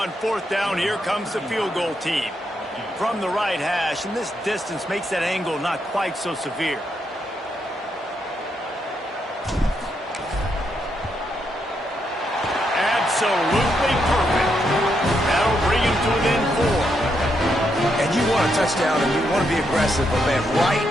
4th down, here comes the field goal team. From the right hash, and this distance makes that angle not quite so severe. Absolutely perfect. That'll bring him to within 4. And you want a touchdown, and you want to be aggressive, but, man, right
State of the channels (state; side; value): normal; both; correlation 0.80